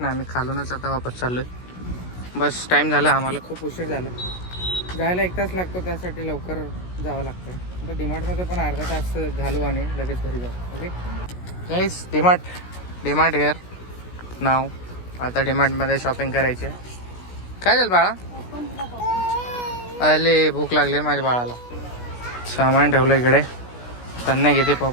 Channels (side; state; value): right; late; 16 ms